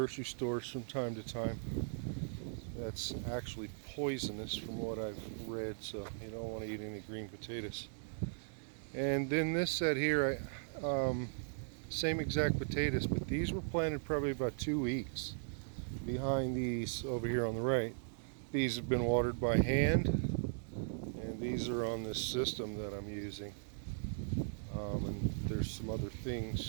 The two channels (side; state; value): left; silent; digital silence